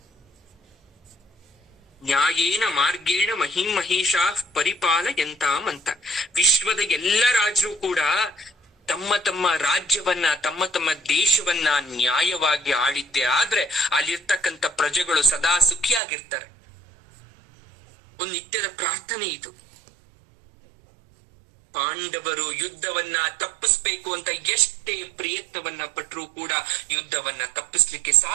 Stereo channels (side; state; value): left; drops out; at 16.0 s